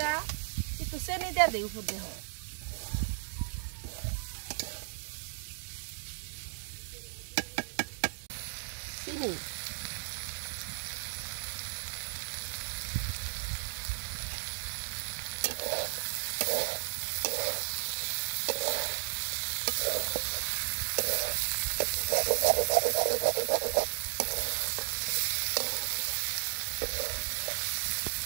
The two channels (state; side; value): silent; left; digital silence